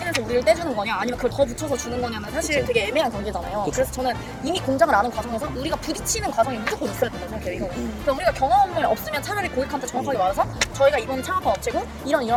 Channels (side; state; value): both; identical; correlation 1.00